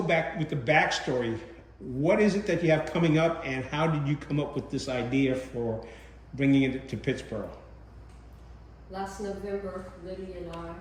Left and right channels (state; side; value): identical; both; correlation 1.00